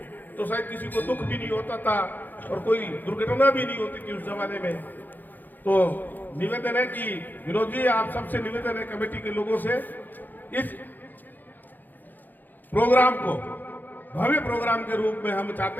तो शायद किसी को दुख भी नहीं होता था और कोई दुर्घटना भी नहीं होती थी उस जमाने में। तो निवेदन है कि विनोद जी, आप सबसे निवेदन है, कमेटी के लोगों से, इस प्रोग्राम को भव्य प्रोग्राम के रूप में हम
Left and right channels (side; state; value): right; late; 0.086 ms